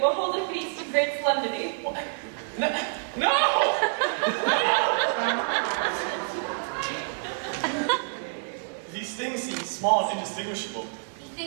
hold a feast of great solemnity. No! These things seem small and indistinguishable.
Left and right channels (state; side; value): silent; left; digital silence